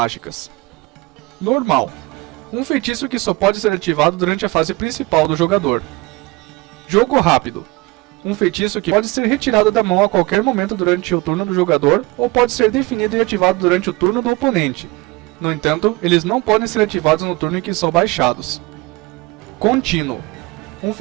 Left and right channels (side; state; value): left; quieter; 23.0 dB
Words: Normal: um feitiço que só pode ser ativado durante a fase principal do jogador. Jogo rápido: um feitiço que pode ser retirado da mão a qualquer momento durante o turno do jogador ou pode ser definido e ativado durante o turno do oponente. No entanto, eles não podem ser ativados no turno em que são baixados. Contínuo: um